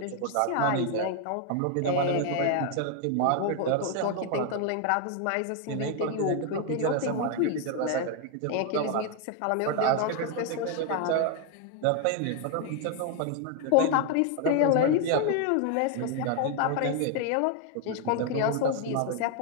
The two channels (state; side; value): different; both; correlation 0.01